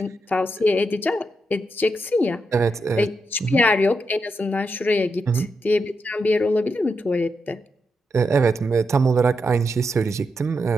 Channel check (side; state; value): both; normal; correlation 0.84